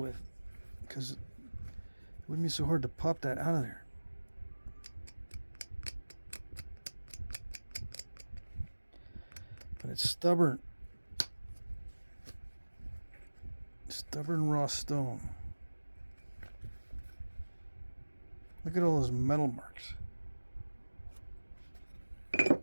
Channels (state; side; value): inverted; both; correlation -1.00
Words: because it wouldn't be so hard to pop that out of there. But it's stubborn. Stubborn raw stone. Look at all those metal marks.